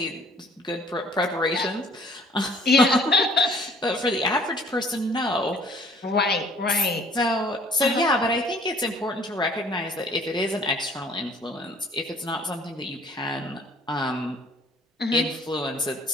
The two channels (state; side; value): normal; both; correlation 0.56